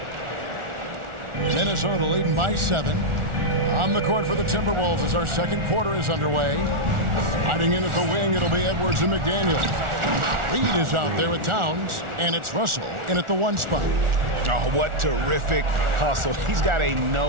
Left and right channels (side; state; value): left; late; 1.4 ms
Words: Minnesota leading by 7. On the court for the Timberwolves as our second quarter is underway. Sliding in at the wing, it'll be Edwards and McDaniels. Reed is out there with Towns, and it's Russell in at the 1 spot. Oh, what terrific hustle. He's got a